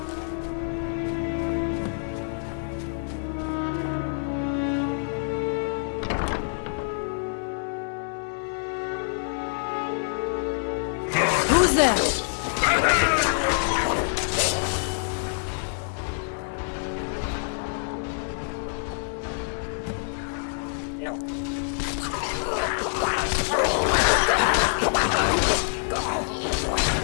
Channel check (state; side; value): silent; right; 59 dB below the other